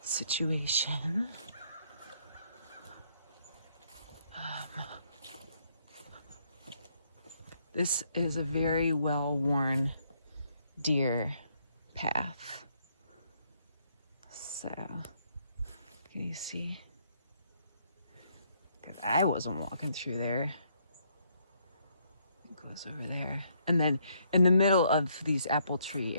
situation. This is a very well-worn deer path. So, can you see? Because I wasn't walking through there. It goes over there. And then in the middle of these apple tree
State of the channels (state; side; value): inverted; both; correlation -0.71